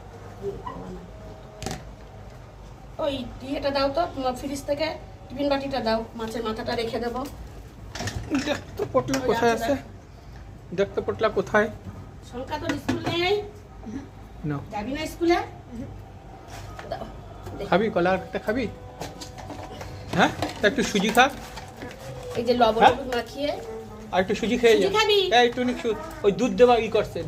ওই ইয়েটা দাও তো তোমার ফ্রিজ থেকে, টিফিন বাটিটা দাও, মাছের মাথাটা রেখে দেবো। দেখতো পটলা কোথায় আছে? দেখতো পটলা কোথায়? সংখ্যা তো স্কুল নেই, না যাবি না স্কুলে? দাও, খাবি কলাটা খাবি? হ্যাঁ, তা একটু সুজি খা। এই যে লবণ হ্যাঁ? হলুদ মাখিয়ে। আর একটু সুজি খেয়ে যা। সুজি খাবি? এই একটু ওই দুধ দেওয়া ই করছে,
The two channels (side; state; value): both; identical; correlation 1.00